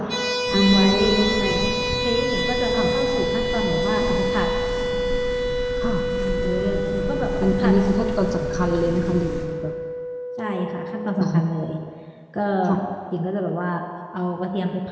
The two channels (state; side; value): identical; both; correlation 1.00